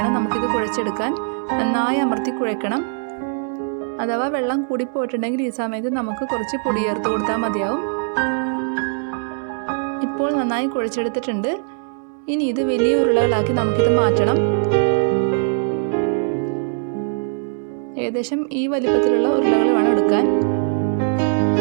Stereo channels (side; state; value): left; silent; 65 dB below the other